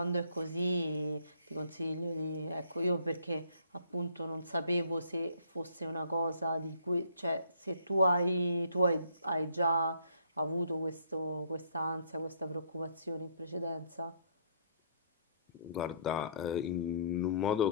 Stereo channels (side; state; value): both; inverted; correlation -0.62